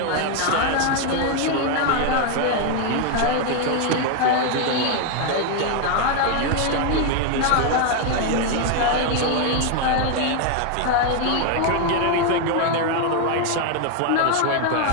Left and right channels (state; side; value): different; both; correlation 0.01